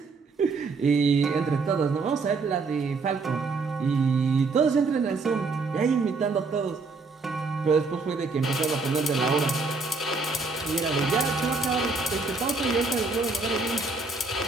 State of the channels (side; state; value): left; quieter; 3.9 dB